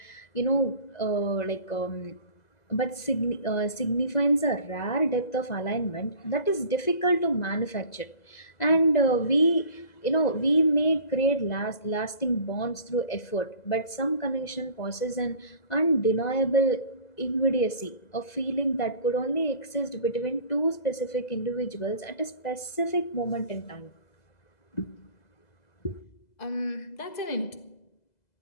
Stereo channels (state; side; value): late; right; 2.0 ms